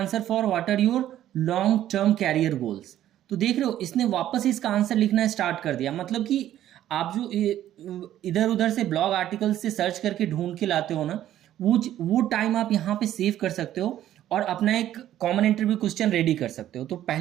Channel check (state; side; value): quieter; left; 12.3 dB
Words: for what are your long term career goals. तो देख रहे हो इसने वापस इसका आंसर लिखना स्टार्ट कर दिया। मतलब कि आप जो इधर उधर से ब्लॉग आर्टिकल से सर्च करके ढूंढ के लाते हो ना, वो टाइम आप यहाँ पे सेव कर सकते हो और अपना एक कॉमन इंटरव्यू क्वेश्चन रेडी कर सकते हो। तो